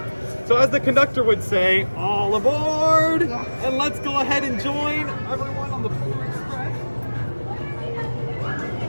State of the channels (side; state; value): both; inverted; correlation -1.00